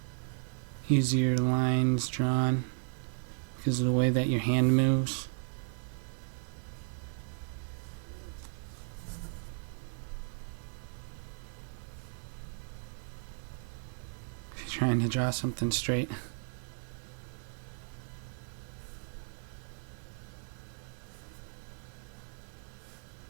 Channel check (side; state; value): left; silent; 54 dB below the other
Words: easier lines drawn because of the way that your hand moves. If you're trying to draw something straight.